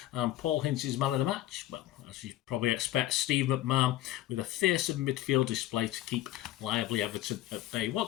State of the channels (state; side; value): quieter; right; 14.4 dB